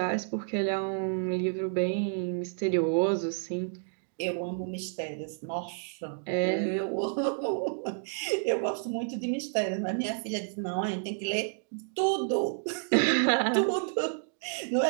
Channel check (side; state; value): left; silent; digital silence